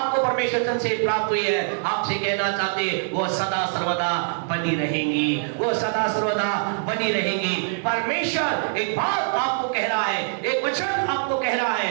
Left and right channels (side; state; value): left; silent; digital silence